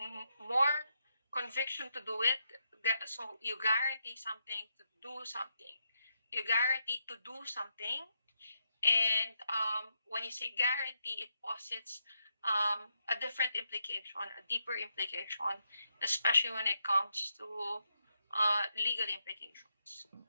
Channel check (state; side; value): inverted; both; correlation -0.81